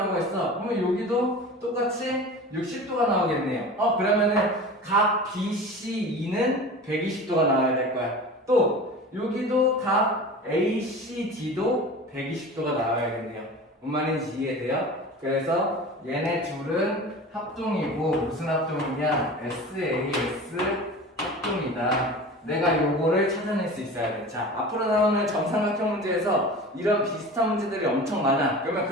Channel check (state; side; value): normal; both; correlation 0.35